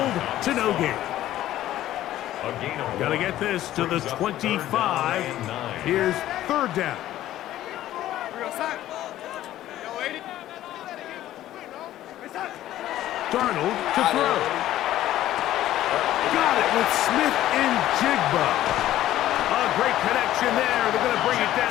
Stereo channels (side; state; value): right; quieter; 13.6 dB